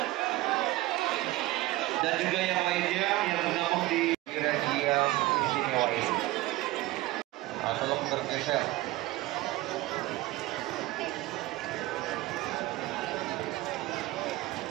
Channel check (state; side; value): quieter; left; 18.1 dB